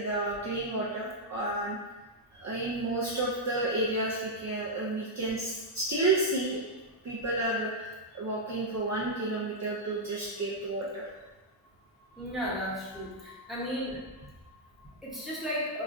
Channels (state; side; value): normal; both; correlation -0.04